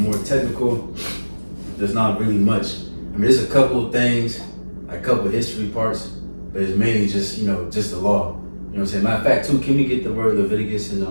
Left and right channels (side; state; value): both; inverted; correlation -1.00